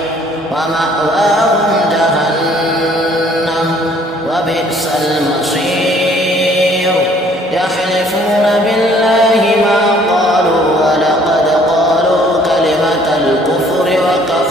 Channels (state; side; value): normal; both; correlation 0.59